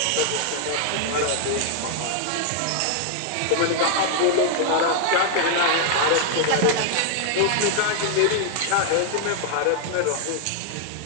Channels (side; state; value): both; different; correlation 0.00